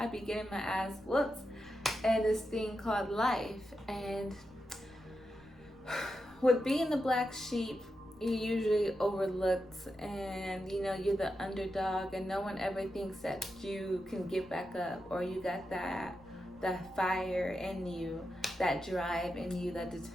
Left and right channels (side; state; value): right; noise; rumble, 26 dB below the sound